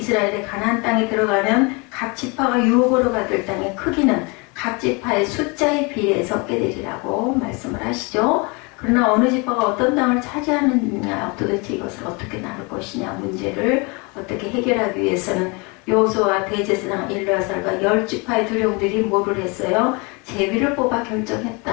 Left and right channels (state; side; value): quieter; right; 29.5 dB